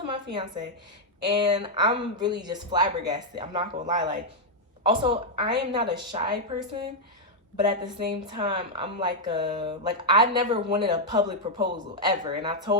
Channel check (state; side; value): normal; both; correlation -0.02